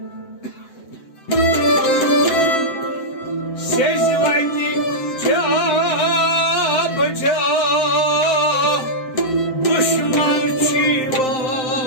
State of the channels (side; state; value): right; late; 7.7 ms